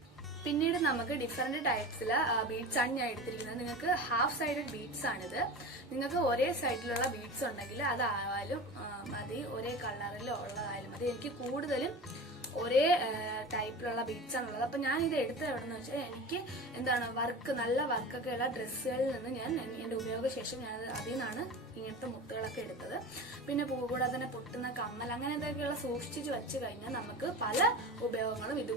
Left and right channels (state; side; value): normal; both; correlation 0.31